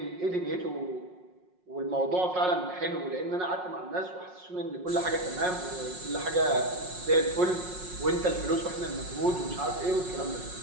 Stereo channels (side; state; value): left; late; 5.5 ms